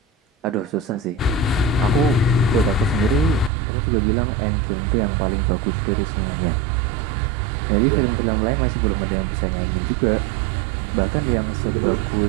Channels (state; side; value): drops out; left; at 3.5 s